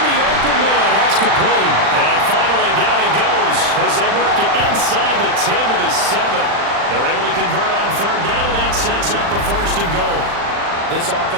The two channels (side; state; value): left; late; 40 ms